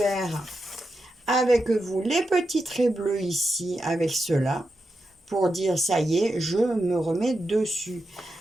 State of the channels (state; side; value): normal; both; correlation 0.87